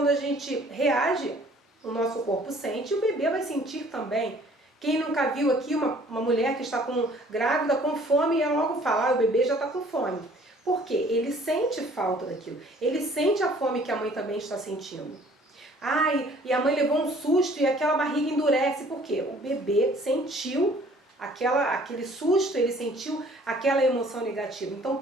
a gente reage, o nosso corpo sente e o bebê vai sentir também. Quem nunca viu aqui uma mulher que está grávida com fome e ela logo fala, o bebê já está com fome. Por quê? Ele sente falta daquilo. Ele sente a fome que a mãe também está sentindo. E a mãe levou um susto e aquela barriga endurece. Por quê? O bebê sentiu aquele susto, ele sentiu aquela emoção negativa. Então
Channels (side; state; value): both; normal; correlation 0.55